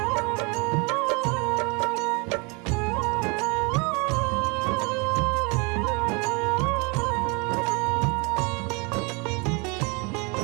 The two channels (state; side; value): quieter; left; 30.3 dB